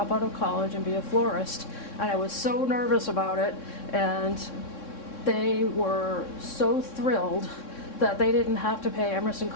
out of college and be a florist. And I was so nervous about it, and they were so thrilled that they didn't have to pay Emerson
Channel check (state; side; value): late; right; 3.6 ms